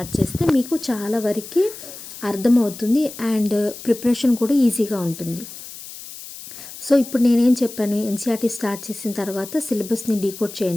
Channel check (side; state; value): left; noise; hiss, 14 dB below the sound